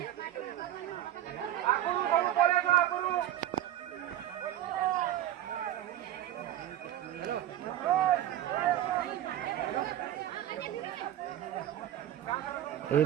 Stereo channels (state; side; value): quieter; left; 12.4 dB